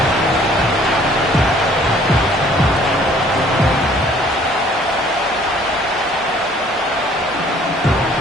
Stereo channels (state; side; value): normal; both; correlation 0.57